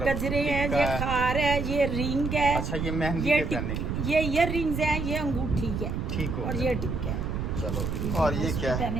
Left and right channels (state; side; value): noise; right; rumble, 2 dB below the sound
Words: इसमें गजरे हैं, टिक्का ये है। खार है, ये रिंग है। अच्छा, ये मेहंदी ये पे पहनने की। ये ईयर रिंग्स हैं, ये अंगूठी है ठीक हो और गया। ये टिक्का है। चलो, और ये उस पे क्या है?